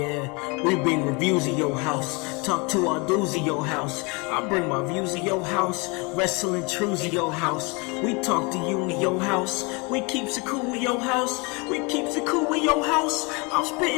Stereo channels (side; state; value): right; quieter; 29.1 dB